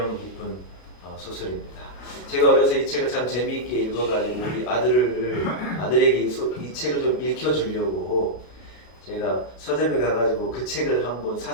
깊은 소설입니다. 제가 어려서 이 책을 참 재미있게 읽어가지고 우리 아들에게 이 책을 좀 읽혀주려고 제가 서점에 가가지고 그 책을 한번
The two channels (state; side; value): late; right; 33 ms